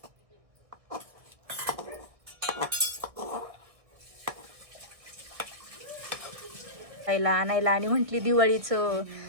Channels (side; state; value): left; late; 1.6 ms